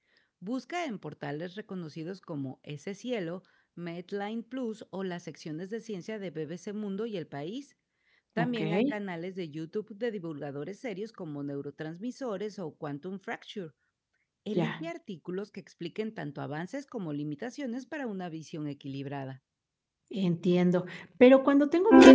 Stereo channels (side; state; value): both; identical; correlation 1.00